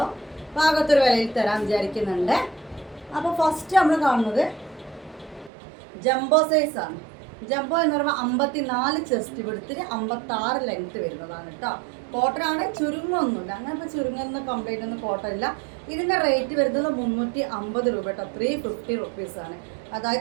പാകത്തൊരു വിലയിൽ തരാൻ വിചാരിക്കുന്നുണ്ട്. അപ്പോൾ ഫസ്റ്റ് നമ്മൾ കാണുന്നത് ജംബോ സൈസാണ്. ജംബോ എന്ന് പറയുമ്പോൾ 54 ചെസ്റ്റ് വിടുത്തിന് 56 ലെങ്ത്ത് വരുന്നതാണ് കേട്ടോ. കോട്ടൺ ആണ്, ചുരുങ്ങൊന്നുമില്ല. അങ്ങനെ ഇപ്പോൾ ചുരുങ്ങുന്ന കംപ്ലൈൻ്റ് ഒന്നും കോട്ടൺ ഇല്ല. ഇതിൻ്റെ റേറ്റ് വരുന്നത് 350 രൂപ കേട്ടോ. 350 റുപ്പീസാണ്.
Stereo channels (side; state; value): left; drops out; at 5.5 s